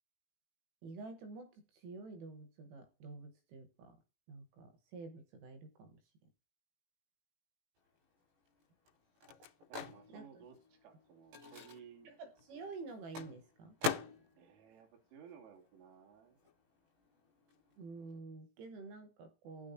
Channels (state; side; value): late; left; 18 ms